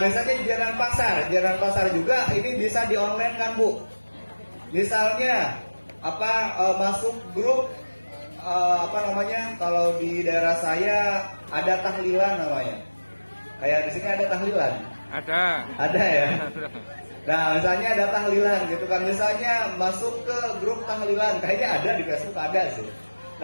biasanya jajanan pasar juga ini bisa di online kan Bu. Misalnya masuk grup kalau di daerah saya ada tahlilan namanya. Kayak di sini ada tahlilan. Ada ya. Nah misalnya ada tahlilan gitu kan, misalnya masuk ke grup tahlilan, kayaknya ada di Facebook ada sih.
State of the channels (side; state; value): both; inverted; correlation -1.00